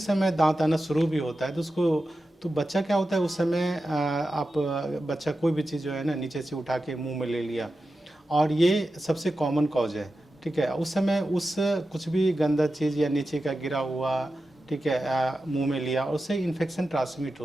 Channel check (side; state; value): both; normal; correlation 0.92